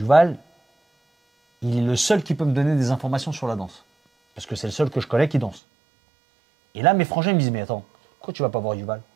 il est le seul qui peut me donner des informations sur la danse. Parce que c'est le seul que je connais qui danse. Et là, mes frangins me disent, mais attends, pourquoi tu vas pas voir Yuval?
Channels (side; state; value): left; drops out; at 5.6 s